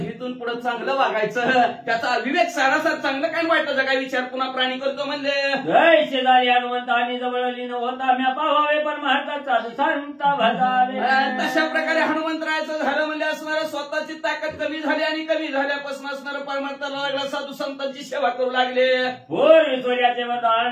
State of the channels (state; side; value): identical; both; correlation 1.00